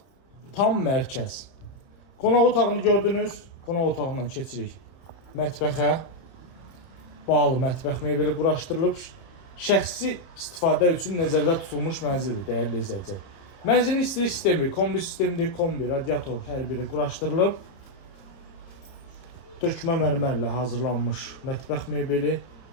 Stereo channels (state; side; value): late; right; 30 ms